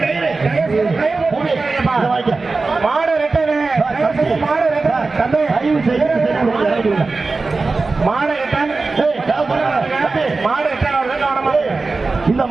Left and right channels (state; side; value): quieter; left; 3.8 dB